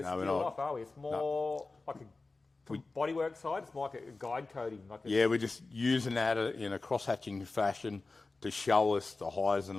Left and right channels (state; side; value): quieter; right; 3.6 dB